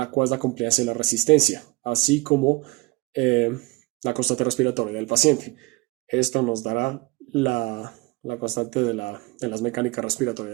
cuál es la compliancia y la resistencia, así como la constante respiratoria del paciente. Esto nos dará la constante de las mecánicas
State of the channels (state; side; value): quieter; left; 22.1 dB